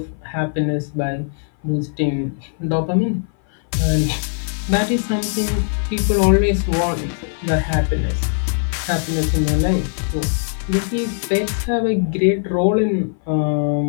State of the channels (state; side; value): silent; right; 58 dB below the other